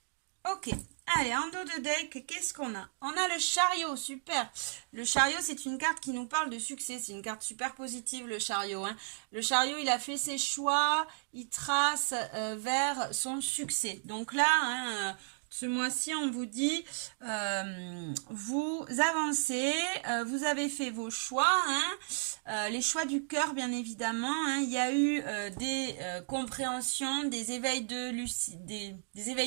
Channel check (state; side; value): silent; left; digital silence